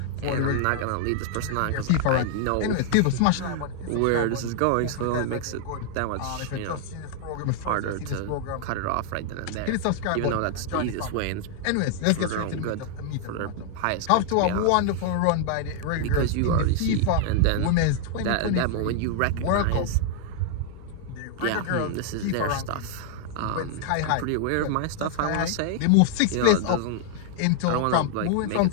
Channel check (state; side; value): different; both; correlation 0.00